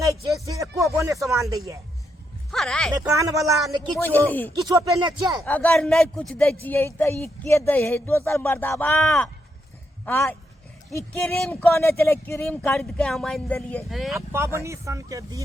छे से एको बोने सामान दैए हरै ने कान वाला ने बुझली। किछो पेने छे अगर नहीं कुछ दे छिए त ई के दे है दोसर मर्दाबा आ ई क्रीम कोने चले क्रीम खरीद के हम आइन देलिए अब पावनी सन के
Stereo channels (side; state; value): both; normal; correlation 0.79